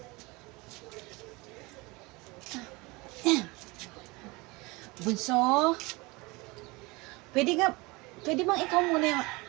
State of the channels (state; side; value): quieter; left; 24.4 dB